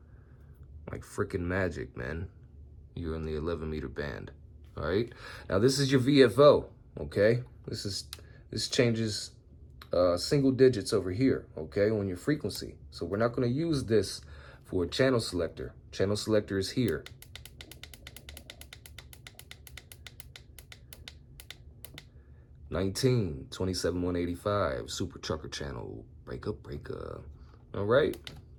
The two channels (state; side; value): identical; both; correlation 1.00